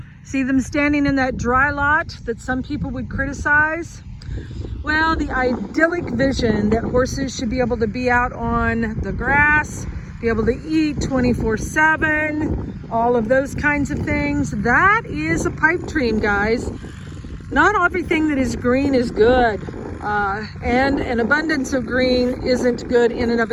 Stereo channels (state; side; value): identical; both; correlation 1.00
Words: See them standing in that dry lot that some people would criticize? Well, the idyllic vision that horses should be able to be out on the grass, be able to eat 24/7, all of those kinds of things, that is a pipe dream, guys. Not everything that is green is good. And an abundance of green isn't good in and of